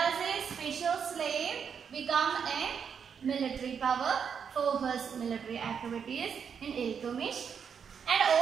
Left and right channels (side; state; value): left; quieter; 7.0 dB